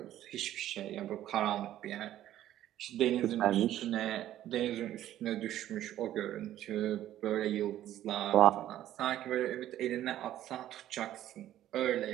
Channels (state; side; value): quieter; left; 12.7 dB